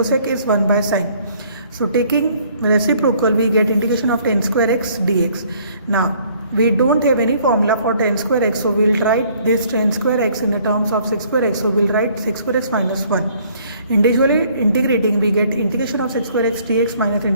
is 1 by sin. So taking reciprocal we get integration of tan square x dx. Now we don't have any formula for tan square x, so we'll write this tan square x in the terms of sec square x. So we'll write sec square x minus 1. Individually integrating we get integration of sec square x dx minus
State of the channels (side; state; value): both; inverted; correlation -0.61